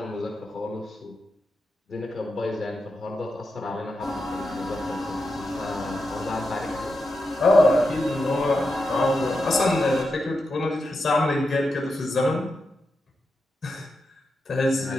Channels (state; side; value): normal; both; correlation 0.88